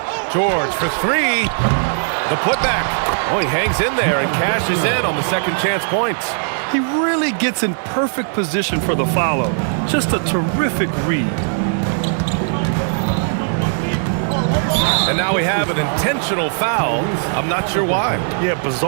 George for three. The putback. Oh, he hangs in there and cashes in on the second chance points. He really gets in perfect position for the follow. Just a terrific read. And now we have an intentional foul. I'm not sure why. Yeah,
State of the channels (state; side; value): silent; left; digital silence